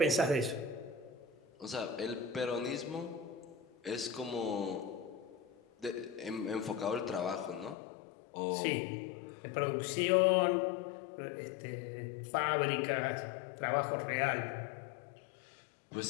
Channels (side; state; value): right; drops out; at 7.8 s